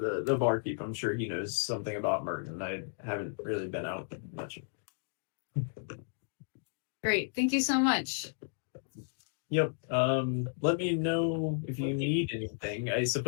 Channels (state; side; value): silent; right; digital silence